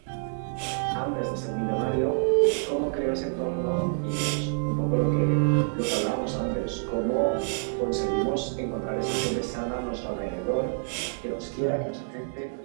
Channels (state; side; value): silent; left; 60 dB below the other